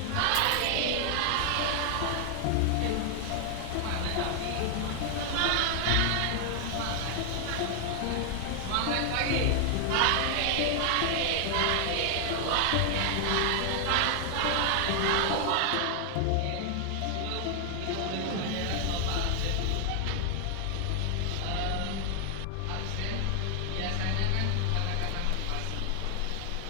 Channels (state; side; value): different; both; correlation 0.00